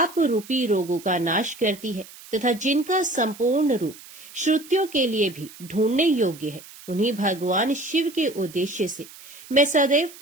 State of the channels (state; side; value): noise; right; hiss, 19 dB below the sound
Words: रूपी रोगों का नाश करती है, तथा जिनका संपूर्ण रूप श्रुतियों के लिए भी ढूंढने योग्य है, उन्हीं भगवान शिव के उद्देश्य से मैं सदैव